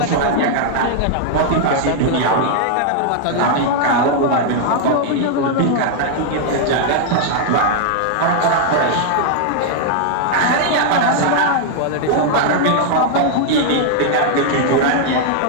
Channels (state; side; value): different; both; correlation -0.01